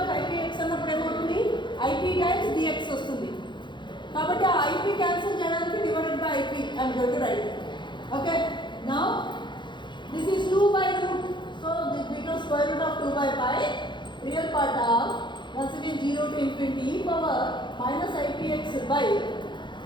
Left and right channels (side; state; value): right; late; 0.23 ms